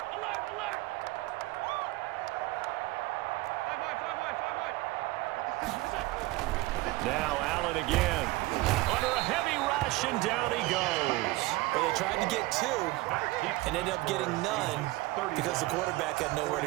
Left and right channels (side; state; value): left; quieter; 20.2 dB